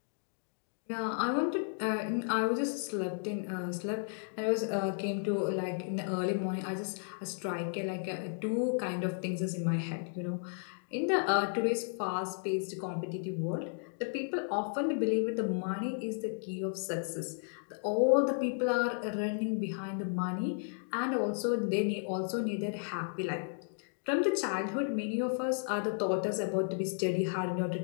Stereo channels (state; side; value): silent; right; digital silence